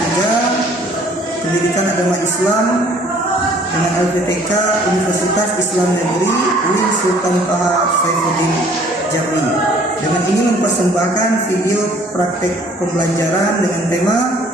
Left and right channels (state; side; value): normal; both; correlation 0.57